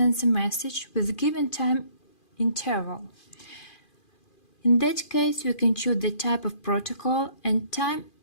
message with given time interval. In that case, we can choose the type of protocol and time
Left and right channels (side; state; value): right; late; 2.4 ms